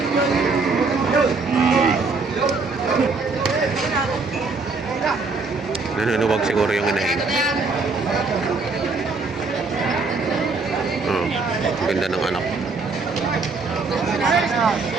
Nanunuwag siguro yung inahin. Oh, ganda ng anak.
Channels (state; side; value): quieter; left; 4.1 dB